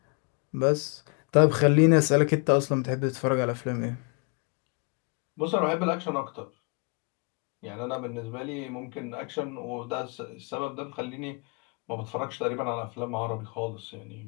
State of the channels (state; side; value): quieter; right; 33.6 dB